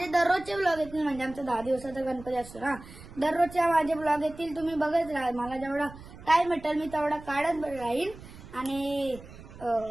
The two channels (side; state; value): right; noise; rumble, 17 dB below the sound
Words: दररोजचे ब्लॉग येतील म्हणजे आमचा 10 दिवसाचा गणपती असतो ना. दररोजच्या माझे ब्लॉग येतील. तुम्ही बघत राहा. मला जेवढा टाइम भेटेल मी तेवढा काढत राहीन. आणि